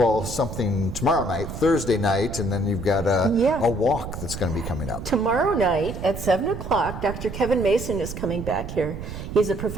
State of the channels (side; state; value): right; noise; rumble, 8 dB below the sound